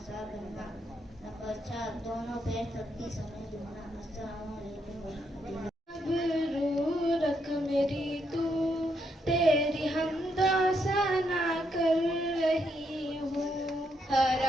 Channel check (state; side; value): normal; both; correlation 0.77